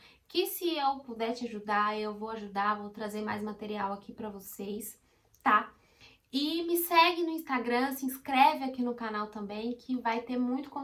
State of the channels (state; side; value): identical; both; correlation 1.00